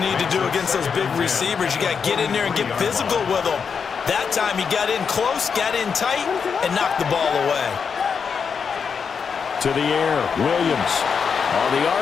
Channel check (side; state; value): right; quieter; 6.2 dB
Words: need to do against those big receivers. You got to get in there and get physical with them. That time he got in close, got in tight, and knocked the ball away. To the air, Williams. On the